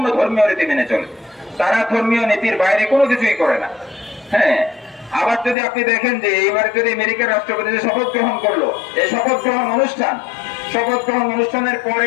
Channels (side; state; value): right; drops out; at 5.6 s